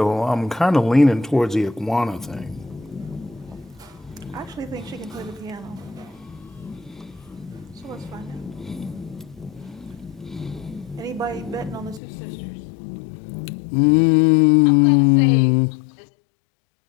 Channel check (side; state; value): right; drops out; at 12.0 s